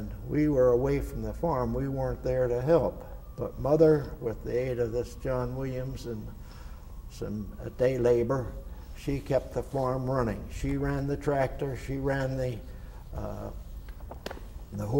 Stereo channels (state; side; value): identical; both; correlation 1.00